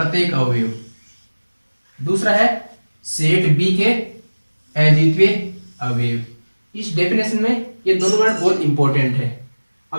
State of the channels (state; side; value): inverted; both; correlation -1.00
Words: अवयव, दूसरा है सेट बी के अद्वितीय अवयव। इस डेफिनेशन में ये दोनों वर्ड बहुत इंपॉर्टेंट है।